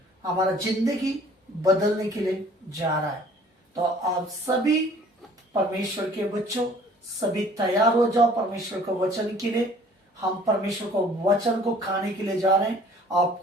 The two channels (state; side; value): normal; both; correlation 0.53